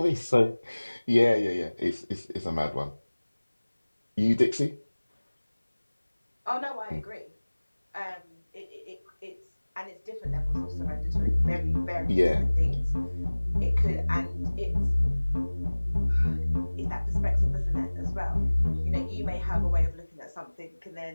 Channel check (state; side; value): inverted; both; correlation -1.00